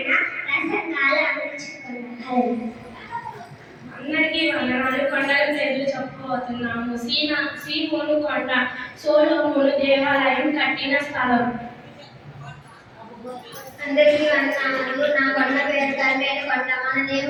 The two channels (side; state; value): both; identical; correlation 1.00